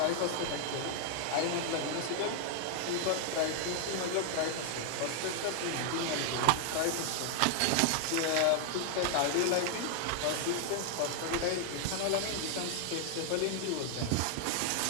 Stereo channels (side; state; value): both; different; correlation 0.00